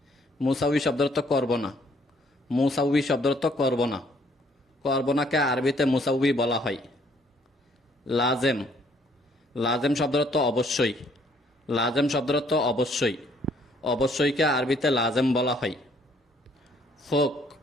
মুসাউই শব্দের অর্থ করব না। মুসাউই শব্দের অর্থ করব না। করব নাকে আরবিতে মুসাউই বলা হয়। লাজেম। লাজেম শব্দের অর্থ অবশ্যই। লাজেম শব্দের অর্থ অবশ্যই। অবশ্যইকে আরবিতে লাজেম বলা হয়। ফোক।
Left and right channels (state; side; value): normal; both; correlation 0.64